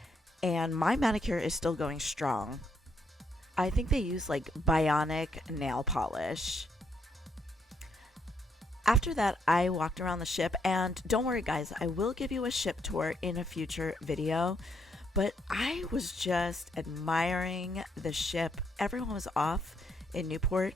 and my manicure is still going strong. I think they use like bionic nail polish. After that, I walked around the ship, and don't worry guys, I will give you a ship tour in a future video, but I was just admiring the ship. Everyone was off in Newport,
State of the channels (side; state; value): both; normal; correlation 0.74